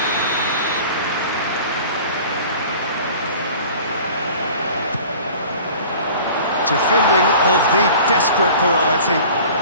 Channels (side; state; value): both; inverted; correlation -0.44